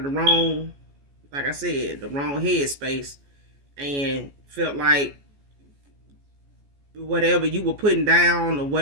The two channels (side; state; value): left; late; 14 ms